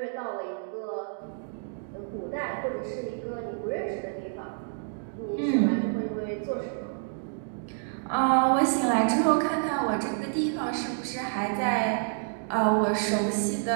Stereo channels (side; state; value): left; silent; digital silence